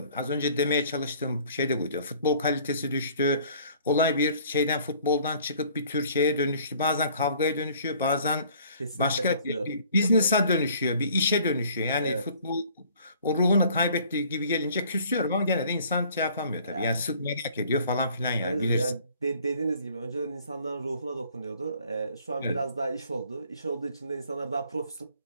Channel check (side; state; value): both; inverted; correlation -0.55